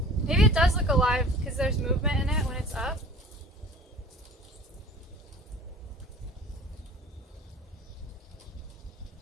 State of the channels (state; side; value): normal; both; correlation 0.43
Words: Maybe it does look alive because there's movement in it when it's up.